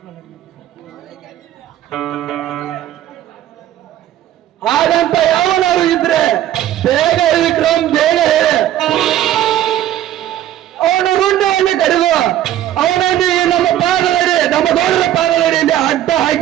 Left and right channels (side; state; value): left; quieter; 12.3 dB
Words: ಹಾಗಂತ ಯಾವನಾರು ಇದ್ರೆ ಬೇಗ ವಿಕ್ರಮ್ ಬೇಗ ಹೇಳಿ ಅವನು ರುಂಡವನ್ನು ಕಡಿದು ಅವನನ್ನು ನಮ್ಮ ಪಾದದಡಿ ನಮ್ಮ ಗೌಡರ ಪಾದದಡಿಯಲ್ಲಿ ಅಡ್ಡ